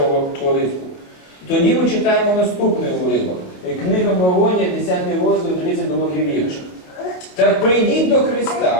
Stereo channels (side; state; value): right; late; 27 ms